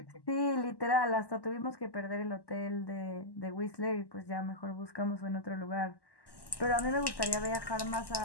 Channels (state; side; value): late; right; 1.1 ms